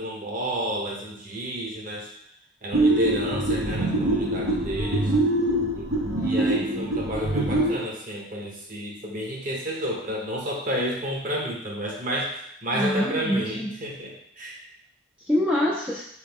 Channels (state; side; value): normal; both; correlation 0.40